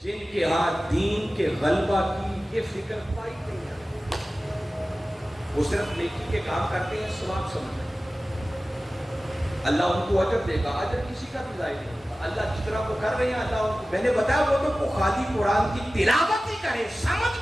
جن کے ہاں دین کے غلبہ کی یہ فکر پائی نہیں ہے. وہ صرف نیکی کے کام کرتے ہیں، ثواب سمجھتے ہیں. اللہ ان کو اجر دے گا، اجر کسی کا بھی ضائع نہیں ہوگا۔ اللہ جس طرح وہ کر رہے ہیں اللہ ان کو، میں نے بتایا وہ تو خالی قرآن کی تلاوت ہی کرے، سمجھ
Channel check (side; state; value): both; normal; correlation 0.96